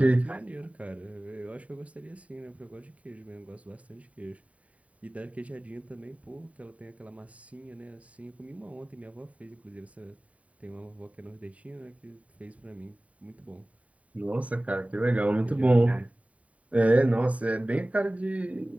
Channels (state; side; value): late; left; 0.067 ms